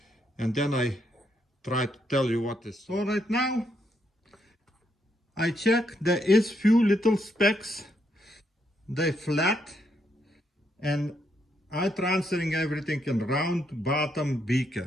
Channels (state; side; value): normal; both; correlation 0.76